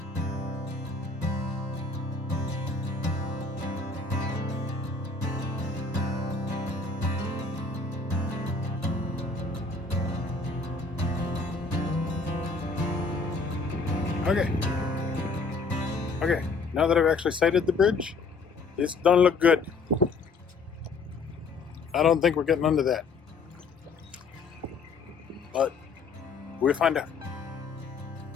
Okay, now that I've actually sighted the bridge, this don't look good. I don't think we're getting under that. But we'll find out.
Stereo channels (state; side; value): quieter; right; 4.3 dB